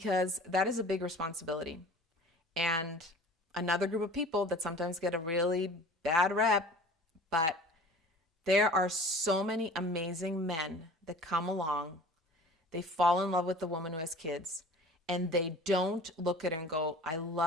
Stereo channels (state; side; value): normal; both; correlation 0.44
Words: that is a big responsibility. And another group of people that sometimes get a really bad rep, but there are so many amazing men that come along. They fall in love with the woman who has kids, and they don't look at her and go, I